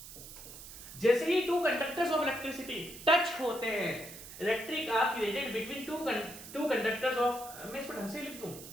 जैसे ही two conductors of electricity touch होते हैं, electric arc created between two conductors of, मैं इसको ढंग से लिख दूं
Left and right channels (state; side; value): noise; right; hiss, 14 dB below the sound